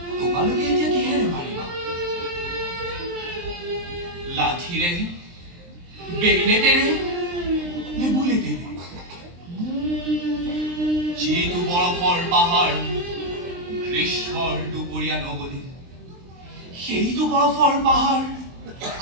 তোমালোকে এতিয়া কিহেৰে মাৰিবা? লাঠিৰে, বেগনেটেৰে নে বুলেটেৰে? যিটো বৰফৰ পাহাৰ গ্ৰীষ্মৰ দুপৰীয়া নগলি, সেইটো বৰফৰ পাহাৰ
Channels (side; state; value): left; late; 23 ms